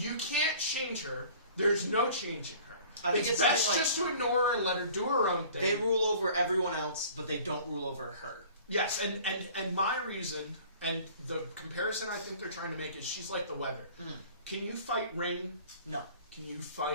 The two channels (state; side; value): inverted; both; correlation -0.48